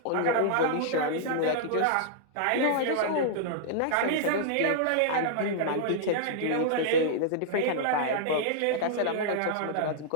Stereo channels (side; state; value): both; different; correlation -0.02